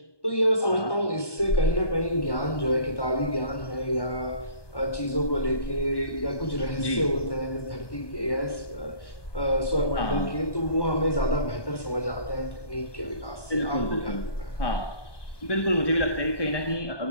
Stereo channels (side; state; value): right; late; 1.2 ms